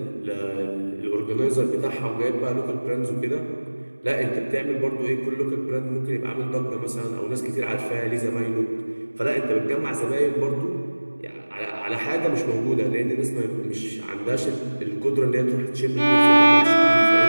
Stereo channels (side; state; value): both; inverted; correlation -1.00